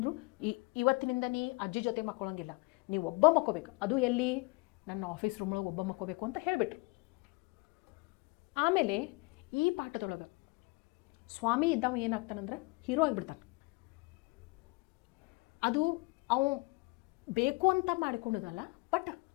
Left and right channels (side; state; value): right; quieter; 27.2 dB